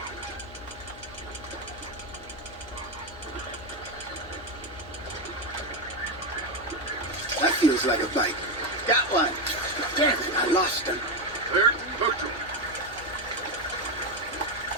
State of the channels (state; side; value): noise; left; hum, 20 dB below the sound